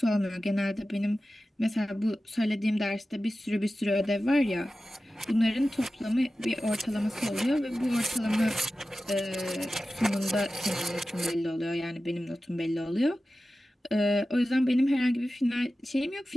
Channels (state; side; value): normal; both; correlation 0.94